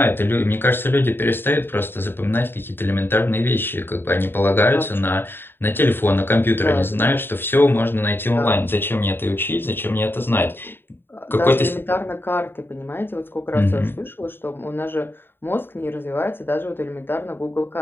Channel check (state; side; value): late; right; 0.10 ms